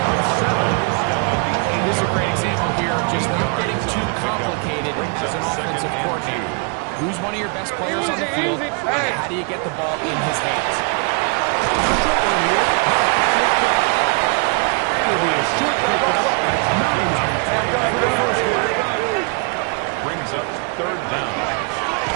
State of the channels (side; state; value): left; quieter; 35.3 dB